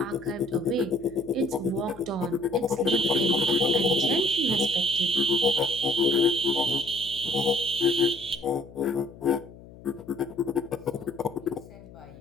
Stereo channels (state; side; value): noise; left; hum, 19 dB below the sound